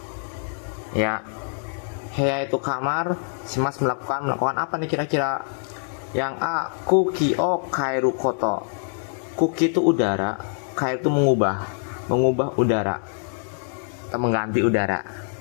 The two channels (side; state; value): right; silent; 62 dB below the other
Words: Ya. Heya itu kamar, shimasu melakukan apa nih kira-kira? Yang A, kuki o kairu koto. Kuki itu udara, kairu itu mengubah udara atau mengganti udara.